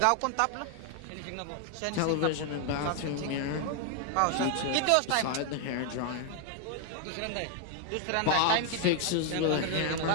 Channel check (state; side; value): different; both; correlation 0.00